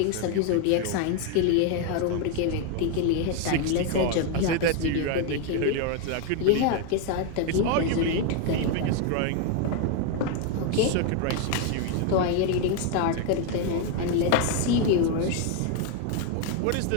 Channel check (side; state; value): both; different; correlation 0.01